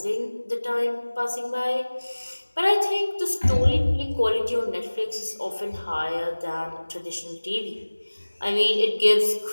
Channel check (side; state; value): both; inverted; correlation -1.00